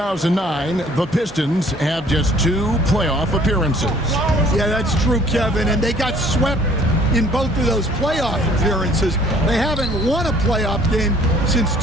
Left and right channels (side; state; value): both; normal; correlation 0.56